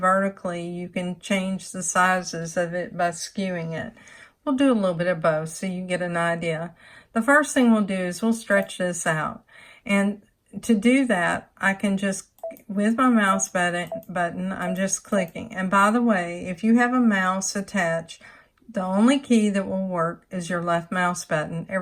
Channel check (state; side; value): identical; both; correlation 1.00